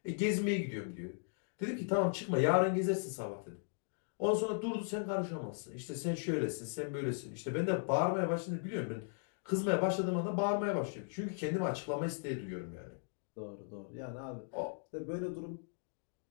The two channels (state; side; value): silent; right; digital silence